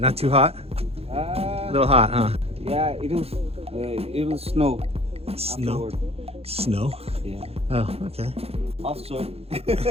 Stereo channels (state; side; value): late; left; 0.29 ms